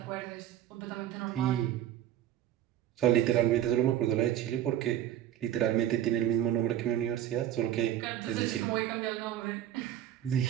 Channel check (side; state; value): left; quieter; 11.8 dB